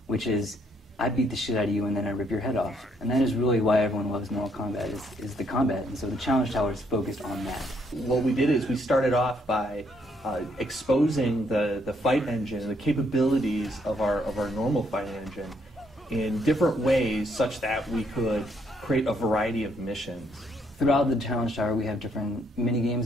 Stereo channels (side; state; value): both; normal; correlation 0.71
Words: which is, I beat the shit out of you and then I rip your head off. And that is really why everyone loves Mortal Kombat, is the combat. And so the Challenge Tower is focused on that. What we did is we started off by exposing the fight engine and the capabilities of our normal fight engine in different ways such that we could create a variety of missions. Throughout the Challenge Tower, we have different mini games